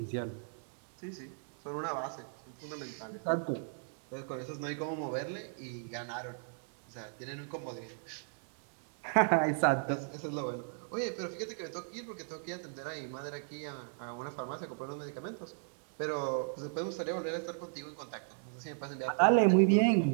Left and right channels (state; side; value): silent; left; digital silence